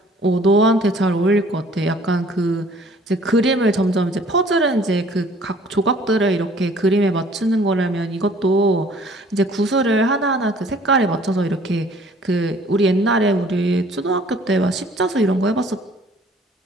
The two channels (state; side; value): normal; both; correlation 0.55